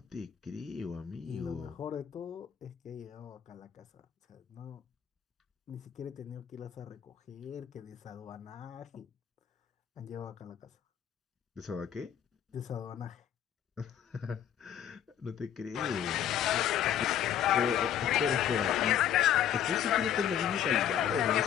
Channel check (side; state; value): right; quieter; 9.8 dB